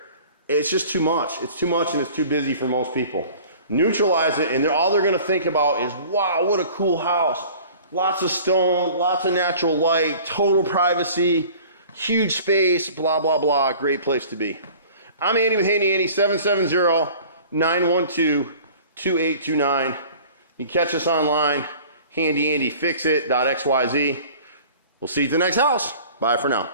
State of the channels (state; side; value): inverted; both; correlation -0.46